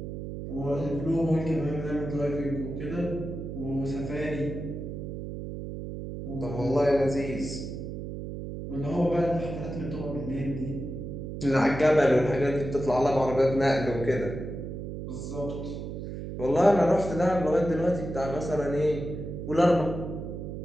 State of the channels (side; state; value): right; noise; hum, 7 dB below the sound